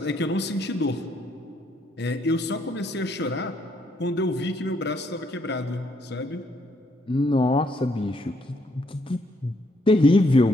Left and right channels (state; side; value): normal; both; correlation 0.71